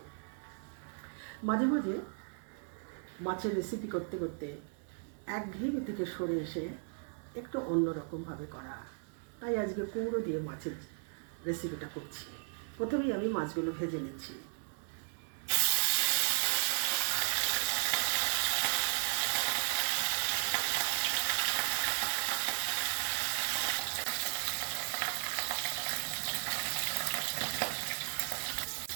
মাঝে মাঝে মাছের রেসিপি করতে করতে একঘেয়েমি থেকে সরে এসে একটু অন্যরকমভাবে করা, তাই আজকে কুমড়ো দিয়ে মাছের রেসিপিটা করছি। প্রথমেই আমি মাছগুলো ভেজে নিচ্ছি।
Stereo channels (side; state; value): left; silent; 54 dB below the other